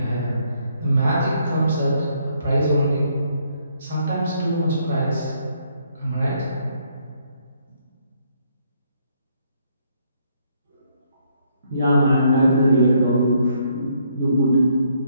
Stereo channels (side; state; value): both; inverted; correlation -0.71